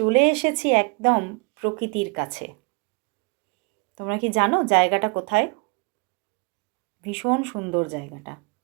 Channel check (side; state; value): left; quieter; 32.4 dB